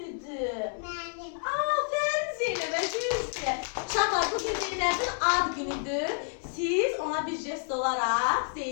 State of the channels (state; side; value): silent; right; 58 dB below the other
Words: Mənim. Aferin Zeynəb'e, düzdür. Uşaqlar, bugün Zeynəb'in ad günüdür. Siz ona bir jest olaraq